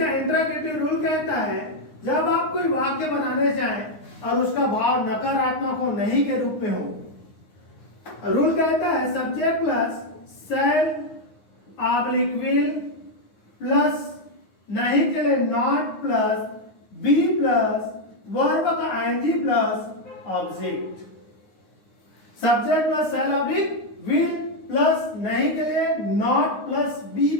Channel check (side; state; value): right; late; 9.6 ms